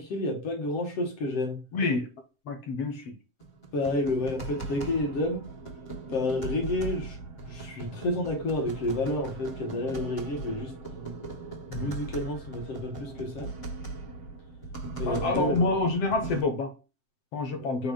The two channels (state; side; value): late; right; 7.6 ms